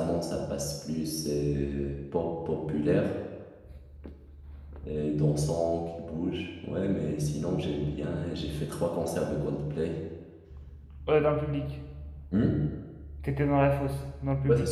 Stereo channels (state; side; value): identical; both; correlation 1.00